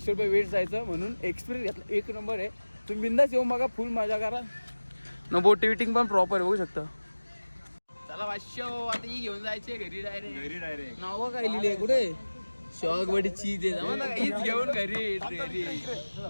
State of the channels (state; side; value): inverted; both; correlation -1.00